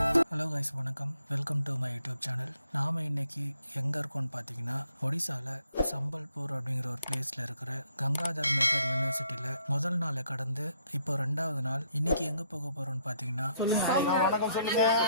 Hello guys, வணக்கம். Welcome to my YouTube channel. நாம் இன்னைக்கு எங்கே இருக்கோம்னு பார்த்தீங்கன்னா, ஒடிசாவில் சம்பல்பூர் அப்படிங்கிற ஒரு பிளேஸில் இருக்கிற கங்காதர் மேகர் யூனிவர்சிட்டியில் முதல் நாளை கடந்து இப்போ 2வது நாள். இன்னைக்கு எங்கே போக போகிறோம்னு பார்த்தீங்கன்னா,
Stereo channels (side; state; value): both; inverted; correlation -0.70